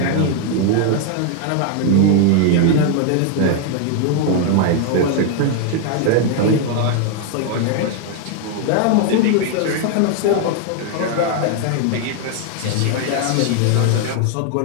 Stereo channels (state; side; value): different; both; correlation 0.00